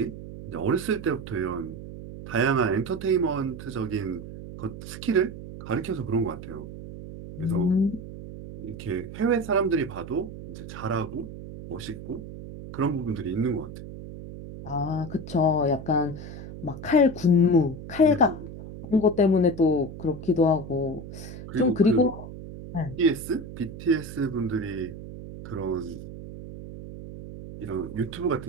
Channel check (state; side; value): noise; right; hum, 12 dB below the sound